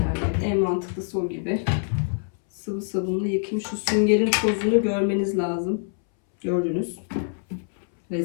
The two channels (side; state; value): right; silent; 62 dB below the other